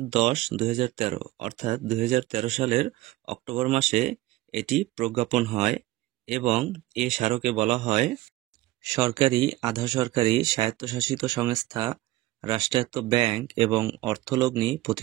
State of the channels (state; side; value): quieter; left; 17.7 dB